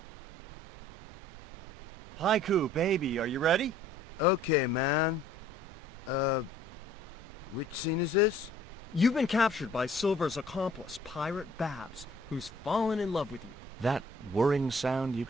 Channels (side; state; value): both; normal; correlation 0.55